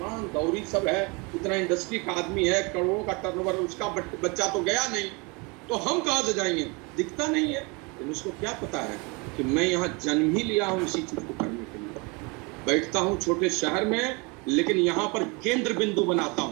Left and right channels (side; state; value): left; quieter; 28.9 dB